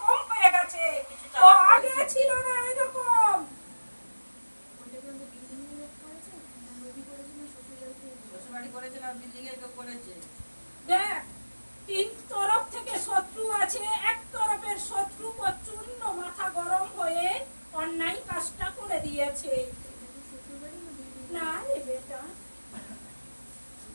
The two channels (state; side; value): inverted; both; correlation -1.00